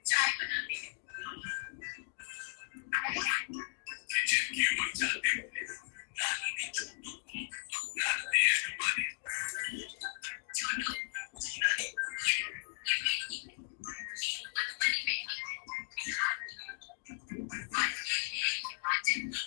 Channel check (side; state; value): right; silent; digital silence